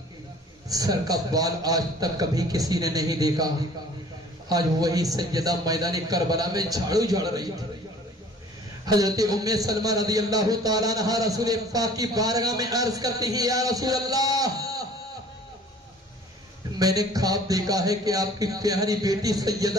سر کا بال آج تک کبھی کسی نے نہیں دیکھا آج وہی سیدہ میدان کربلا میں جھاڑو جھاڑ رہی تھی حضرت ام سلمہ رضی اللہ تعالیٰ عنہ رسول پاک کی بارگاہ میں عرض کرتی ہیں یا رسول اللہ میں نے خواب دیکھا ہے کہ آپ کی پیاری بیٹی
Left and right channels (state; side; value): normal; both; correlation 0.50